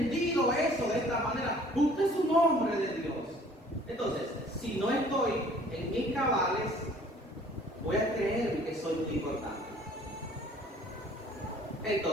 eso de esta manera, usted es un hombre de Dios. Entonces, si no estoy en mis cabales, voy a creer que soy muy importante.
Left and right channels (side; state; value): both; normal; correlation 0.54